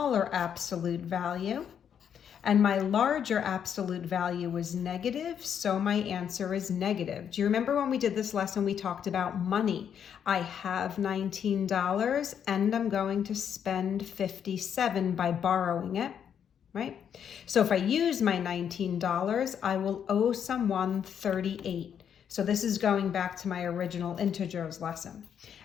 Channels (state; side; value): quieter; right; 8.4 dB